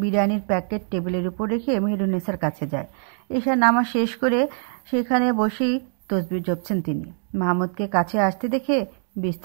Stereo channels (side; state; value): left; silent; 63 dB below the other